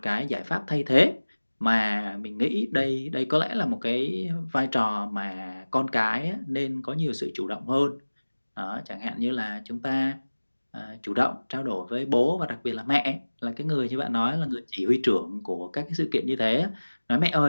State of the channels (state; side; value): inverted; both; correlation -1.00